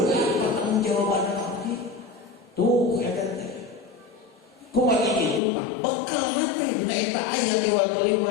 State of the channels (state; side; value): drops out; right; at 5.4 s